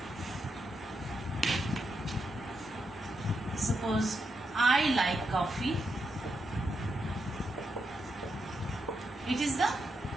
Suppose I like coffee. It is the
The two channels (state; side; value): normal; both; correlation 0.83